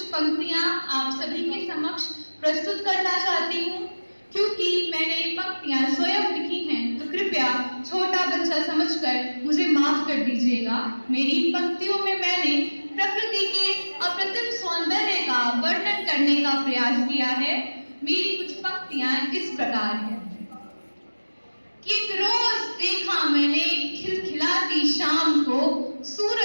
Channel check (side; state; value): both; inverted; correlation -1.00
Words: पंक्तियां आप सभी के समक्ष प्रस्तुत करना चाहती हूँ। क्योंकि मैंने ये पंक्तियां स्वयं लिखी हैं तो कृपया छोटा बच्चा समझकर मुझे माफ कर दीजिएगा। मेरी इन पंक्तियों में मैंने प्रकृति के अप्रतिम सौंदर्य का वर्णन करने का प्रयास किया है। मेरी कुछ पंक्तियां इस प्रकार हैं कि एक रोज देखा मैंने खिलखिलाती शाम को